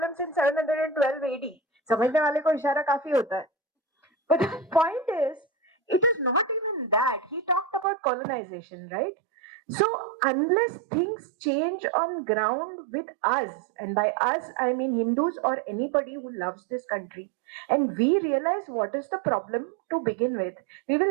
since 712 AD. समझने वाले को इशारा काफी होता है. But the point is, it is not even that. He talked about colonization, right? So unless things change on ground with us, and by us I mean Hindus or anybody who loves this country, and we realize what is the problem to begin with, we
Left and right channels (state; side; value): drops out; left; at 7.9 s